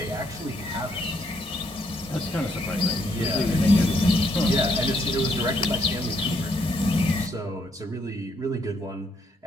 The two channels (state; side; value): normal; both; correlation 0.72